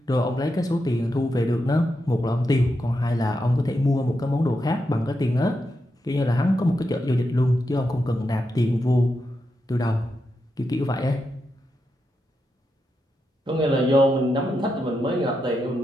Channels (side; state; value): both; normal; correlation 0.86